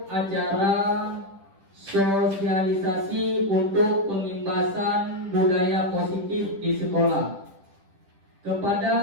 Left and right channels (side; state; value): left; late; 10 ms